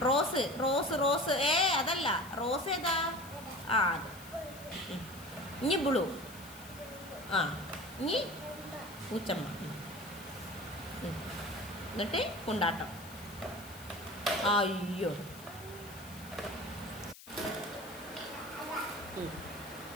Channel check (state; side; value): noise; left; hiss, 17 dB below the sound